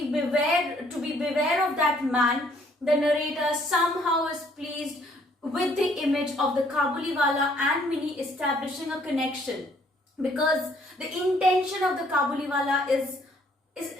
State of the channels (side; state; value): both; normal; correlation 0.64